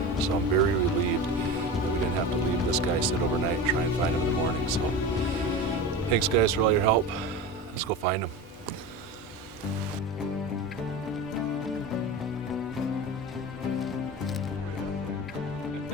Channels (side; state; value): both; normal; correlation 0.29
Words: So I'm very relieved that we didn't have to leave this guy sit overnight and try and find him in the morning. So thanks guys for all your help. Let's go find him.